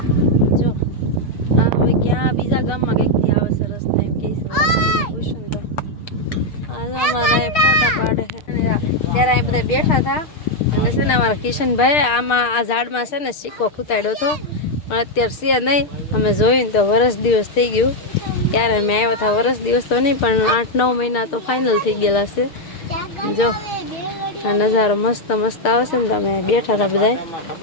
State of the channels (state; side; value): late; right; 6.7 ms